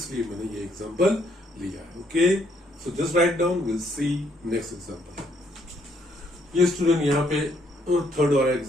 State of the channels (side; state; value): both; normal; correlation 0.70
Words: मैंने ये एग्जांपल लिया है. Okay, so just write down, will see next example. ये स्टूडेंट यहाँ पे थर्ड वाला